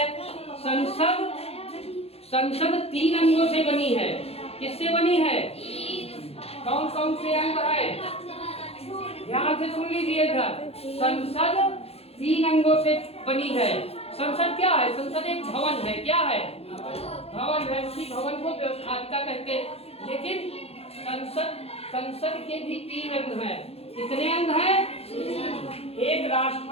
संसद 3 अंगों से बनी है। किससे बनी है? कौन कौन से अंग है? ध्यान से सुन लीजिए इधर। संसद 3 अंगों से बनी है। संसद क्या है? संसद एक भवन है। क्या है? भवन है। उसी भवन को व्यवस्थापिका कहते हैं। लेकिन संसद के भी 3 अंग हैं। कितने अंग हैं? एक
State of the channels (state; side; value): late; right; 0.29 ms